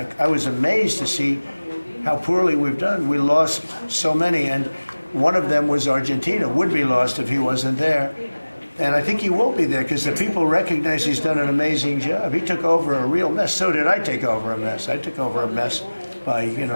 was amazed to see how poorly we've done. We lost so many, and one of them was Argentina, would be lost if he wasn't there. And I think he will be there because the people recognize he's done an amazing job. He took over a real mess. So did I take over a mess. I took over a mess by,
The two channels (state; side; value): inverted; both; correlation -1.00